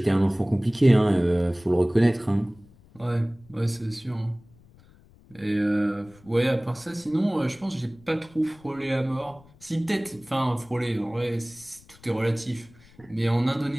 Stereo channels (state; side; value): noise; left; rumble, 26 dB below the sound